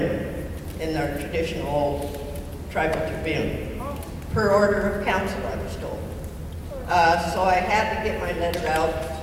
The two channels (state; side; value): identical; both; correlation 1.00